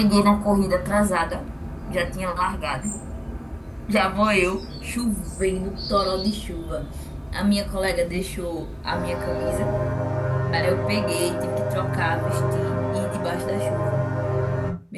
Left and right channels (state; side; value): identical; both; correlation 1.00